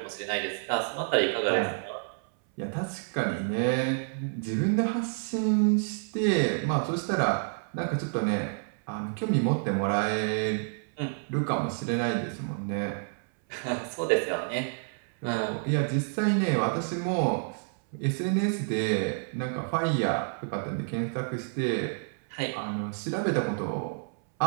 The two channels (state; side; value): silent; left; 59 dB below the other